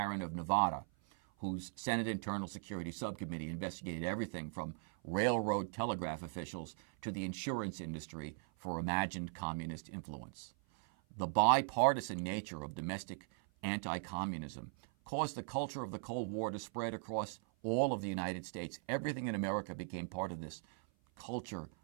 of Nevada, whose Senate Internal Security Subcommittee investigated everything from railroad telegraph officials to the insurance industry for imagined communist influence. The bipartisan nature of domestic anti-communism caused the culture of the Cold War to spread across all of the United States. Everything in America became part of this culture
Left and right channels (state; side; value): silent; left; 52 dB below the other